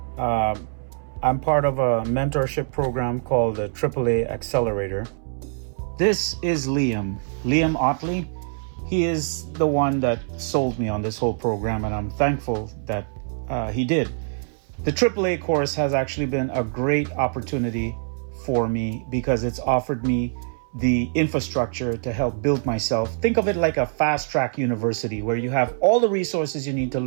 I'm part of a mentorship program called the AAA Accelerator. This is Liam Otley. He is the one that sold me on this whole program, and I'm thankful that he did. The AAA course has actually been a great opportunity for me because it's offered me the infrastructure to help build myself. Think of it like a fast track university where you have all the resources you need to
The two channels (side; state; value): left; silent; 63 dB below the other